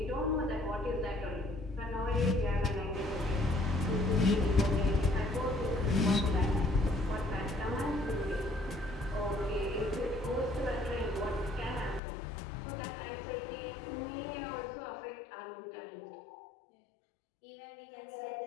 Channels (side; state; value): right; drops out; at 12.0 s